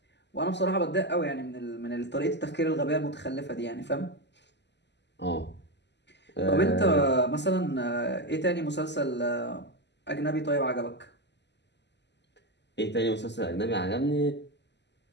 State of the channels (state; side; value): late; right; 0.50 ms